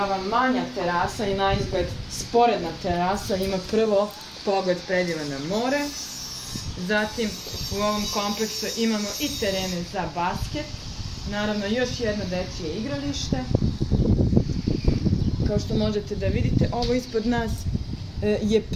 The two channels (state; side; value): identical; both; correlation 1.00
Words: manja terasa i naizgled sporedna terasa ima prvo pogled predivan na more. Zatim u ovom kompleksu imamo i terene za basket, naravno još jedno dečije igralište. Kao što možete da vidite, ovo ispod nas je